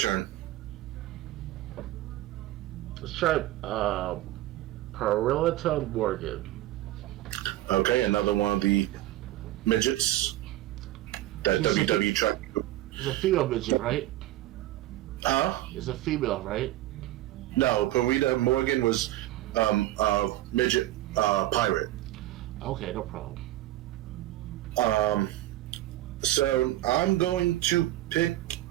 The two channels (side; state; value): left; quieter; 15.5 dB